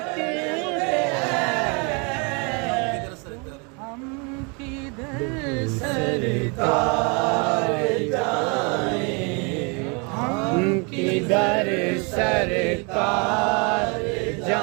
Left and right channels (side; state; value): left; quieter; 32.4 dB